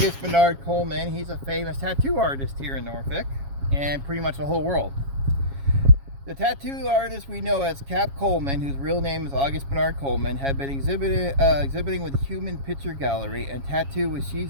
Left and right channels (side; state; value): left; late; 7.3 ms